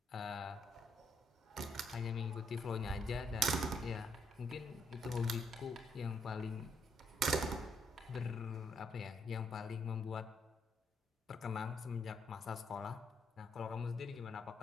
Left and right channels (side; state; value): both; normal; correlation 0.74